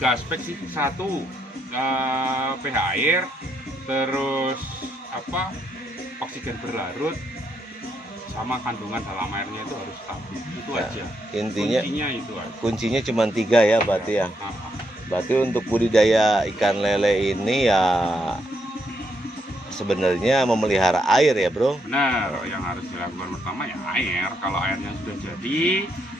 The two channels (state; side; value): normal; both; correlation 0.77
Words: aspek sih. Satu, pH air, terus oksigen berlarut, sama kandungan dalam airnya itu harus stabil. Itu Ya, aja. Intinya itu aja. kuncinya cuma 3 ya berarti ya. Berarti untuk budidaya ikan lele ini ya sebenarnya memelihara air ya, Bro. Benar, yang harus dilakukan pertama ya air. Kalau airnya sudah jadi,